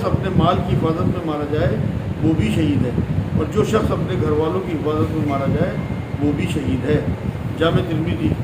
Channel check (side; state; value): both; identical; correlation 1.00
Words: اپنے مال کی حفاظت میں مارا جائے وہ بھی شہید ہے. اور جو شخص اپنے گھر والوں کی حفاظت میں مارا جائے وہ بھی شہید ہے. جامع ترمذی